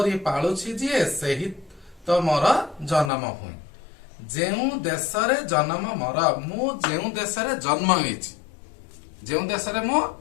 पालुछि जे सही तो मोर जन्म भूमि जो देश रे जन्म मोर मु जो देश रे जन्म हेछि जो देश रे मु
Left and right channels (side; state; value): right; drops out; at 3.1 s